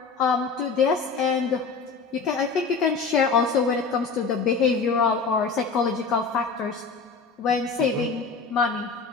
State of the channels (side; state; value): right; quieter; 4.8 dB